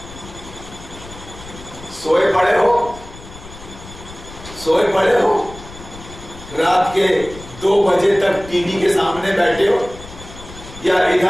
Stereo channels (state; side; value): noise; left; rumble, 16 dB below the sound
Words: سوئے پڑے ہو, رات کے 2 بجے تک ٹی وی کے سامنے بیٹھے ہو, یا